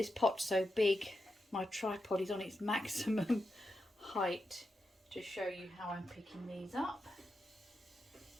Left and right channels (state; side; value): normal; both; correlation 0.87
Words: pot's so big, my tripod is on its maximum height to show you how I'm picking these up.